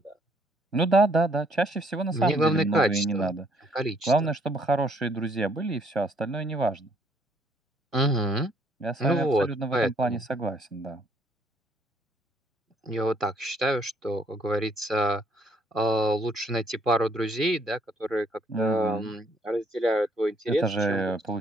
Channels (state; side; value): normal; both; correlation 0.65